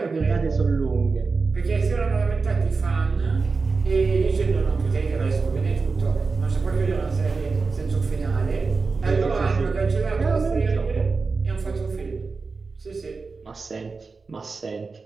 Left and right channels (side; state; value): left; quieter; 4.3 dB